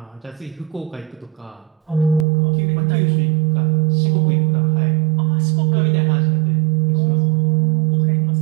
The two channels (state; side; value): drops out; left; at 2.2 s